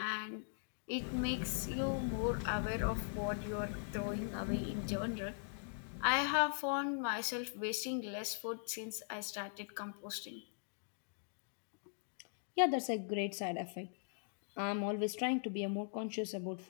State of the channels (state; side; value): silent; right; digital silence